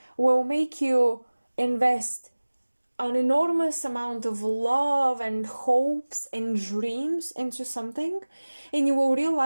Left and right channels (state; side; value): inverted; both; correlation -1.00